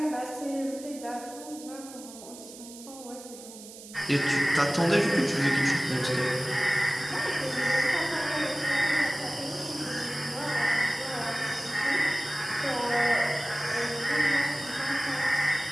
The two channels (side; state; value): right; noise; hiss, 16 dB below the sound